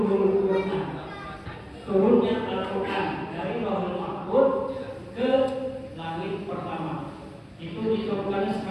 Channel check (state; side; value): identical; both; correlation 1.00